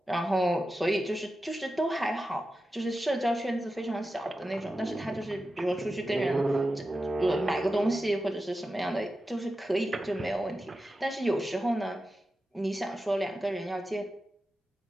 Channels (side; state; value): both; normal; correlation 0.92